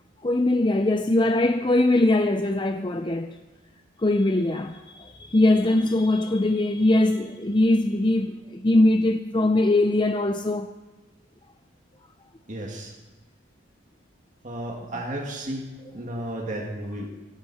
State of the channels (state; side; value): normal; both; correlation 0.82